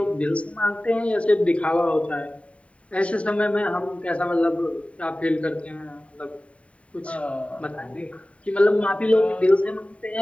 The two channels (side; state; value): right; late; 0.064 ms